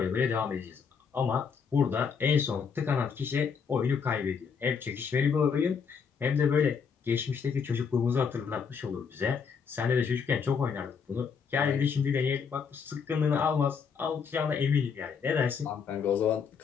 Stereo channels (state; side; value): quieter; right; 6.2 dB